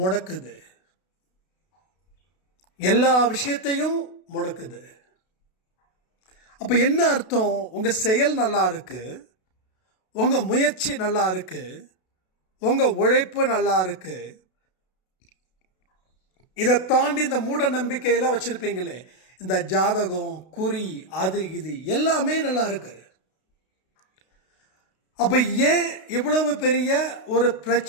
எல்லா விஷயத்தையும் முடக்குது. அப்ப என்ன அர்த்தம்? உங்க செயல் நல்லா இருக்கு, உங்க முயற்சி நல்லா இருக்கு, உங்க உழைப்பு நல்லா இருக்கு, இதை தாண்டி இந்த மூட நம்பிக்கையெல்லாம் வச்சிருப்பீங்களே, இந்த ஜாதகம், குறி, அது இது எல்லாமே நல்லா இருக்கு. அப்ப ஏன் இவ்வளவு பெரிய ஒரு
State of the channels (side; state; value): right; late; 32 ms